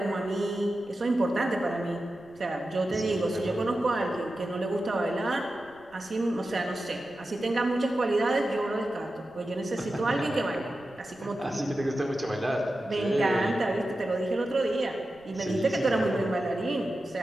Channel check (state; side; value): noise; right; rumble, 28 dB below the sound